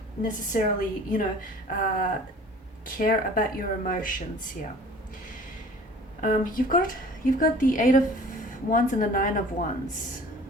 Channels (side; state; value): both; normal; correlation 0.47